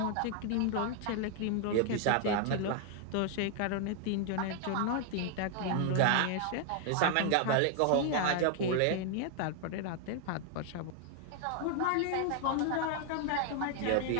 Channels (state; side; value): different; both; correlation 0.00